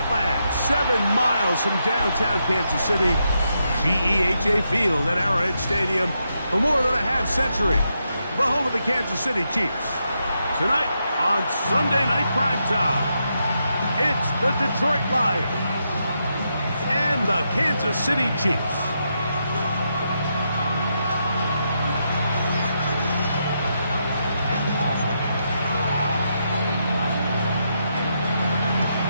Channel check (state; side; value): inverted; both; correlation -0.82